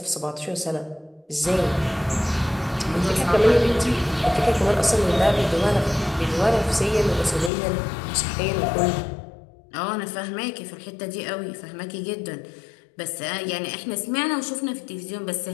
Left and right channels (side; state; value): right; drops out; at 7.5 s